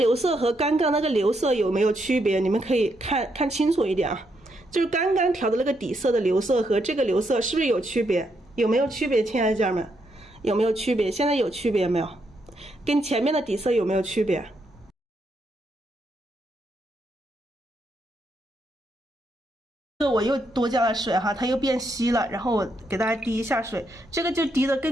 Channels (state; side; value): normal; both; correlation 0.78